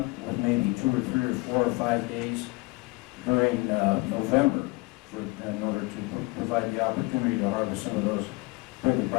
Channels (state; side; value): quieter; right; 24.4 dB